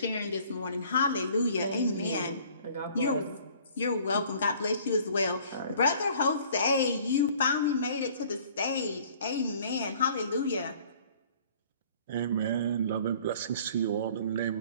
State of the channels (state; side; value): inverted; both; correlation -0.54